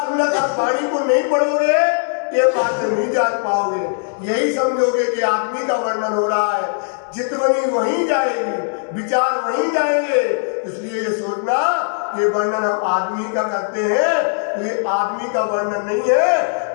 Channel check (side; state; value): right; silent; digital silence